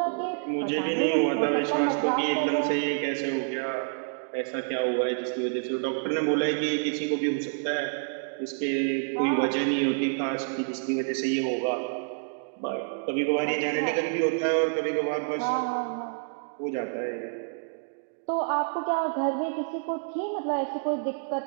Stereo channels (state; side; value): silent; left; digital silence